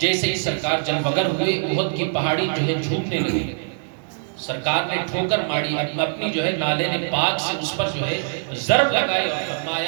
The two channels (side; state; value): left; silent; digital silence